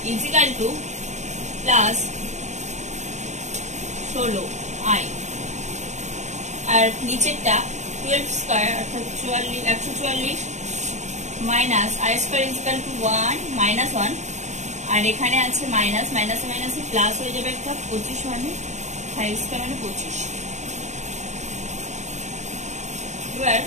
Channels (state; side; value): late; left; 0.34 ms